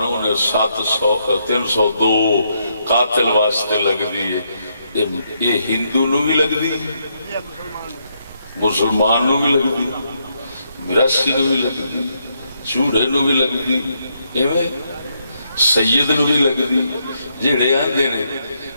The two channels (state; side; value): inverted; both; correlation -0.77